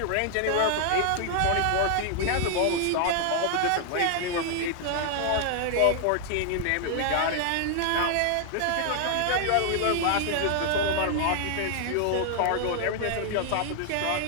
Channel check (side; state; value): both; different; correlation 0.00